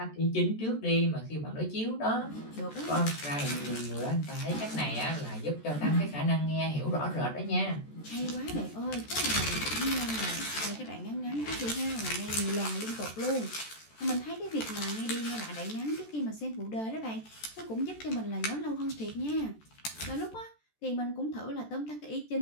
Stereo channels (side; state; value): right; late; 14 ms